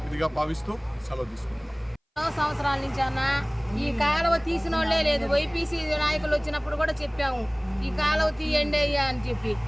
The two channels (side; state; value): both; identical; correlation 1.00